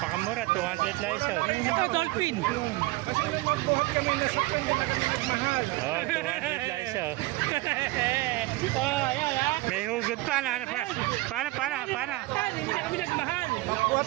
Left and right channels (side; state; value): left; quieter; 20.7 dB